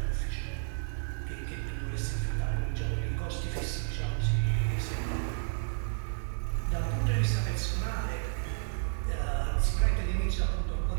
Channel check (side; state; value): left; silent; digital silence